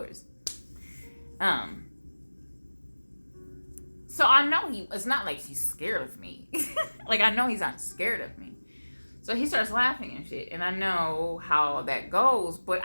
So I know it's not like he's scared of me. Like, I know he's not scared of me. So he starts laughing and shit, and I know how that goes, but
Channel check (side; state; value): both; inverted; correlation -1.00